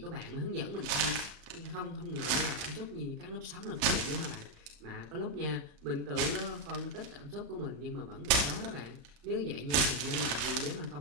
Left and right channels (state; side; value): late; left; 35 ms